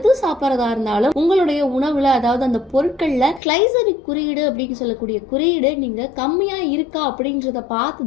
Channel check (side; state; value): right; drops out; at 3.4 s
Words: சாப்பிட்றதா இருந்தாலும் உங்களுடைய உணவுல, அதாவது அந்த பொருட்கள் கிளைசமிக் குறியீடு அப்படின்னு சொல்லக்கூடிய குறியீடு நீங்க கம்மியா இருக்கா அப்படின்றத பார்த்து